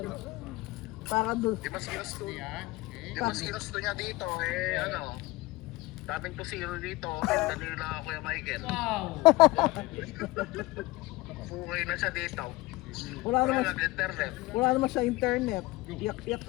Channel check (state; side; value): quieter; right; 20.6 dB